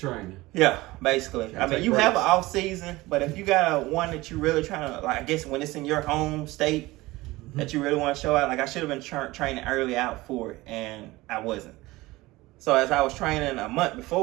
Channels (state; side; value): quieter; left; 19.9 dB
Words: Yeah, basically. I mean, you have an off season, but if you got one that you really trying to, like, I guess when it's in your home state, that you really want to show out. Like I should have been training early out for it, and I wasn't. So as I was training a month